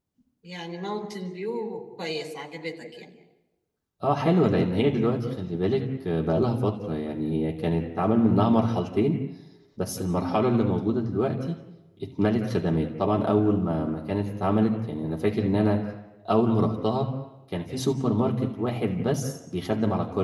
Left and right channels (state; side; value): identical; both; correlation 1.00